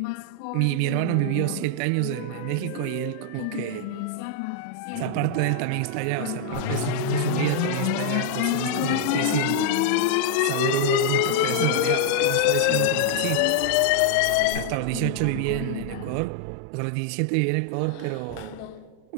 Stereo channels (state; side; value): different; both; correlation -0.01